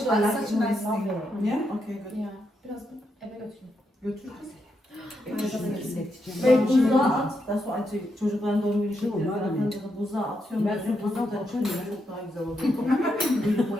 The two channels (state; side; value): normal; both; correlation 0.82